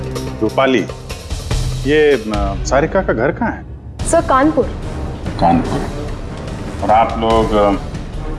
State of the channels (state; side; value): identical; both; correlation 1.00